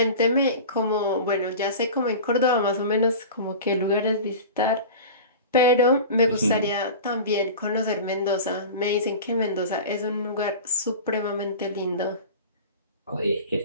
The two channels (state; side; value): inverted; both; correlation -0.34